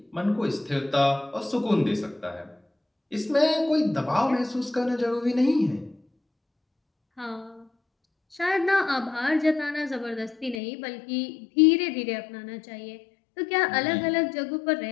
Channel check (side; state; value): right; drops out; at 10.6 s